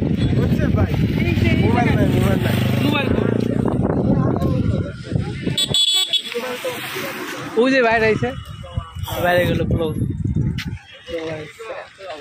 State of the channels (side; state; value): both; identical; correlation 1.00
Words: বুঝছে ভাই। মোবাইল নাই ওই যে বাইরে আইছে, বাইরে গেল পুরো